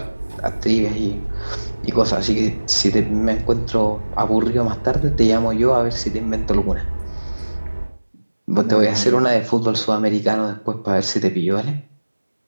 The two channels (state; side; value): inverted; both; correlation -1.00